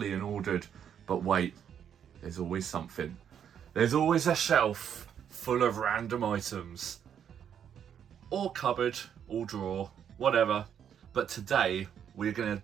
and ordered, but wait, there's always something. There's always a shelf full of random items. Or cupboard, or drawer, whatever. But today, we're going to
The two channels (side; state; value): left; quieter; 8.7 dB